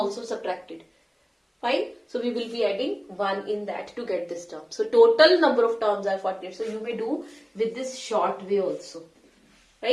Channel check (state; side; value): identical; both; correlation 1.00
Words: subtracted. Fine. So we will be adding 1 in that to get this term. So total number of terms are 48. So you may do with this short way also.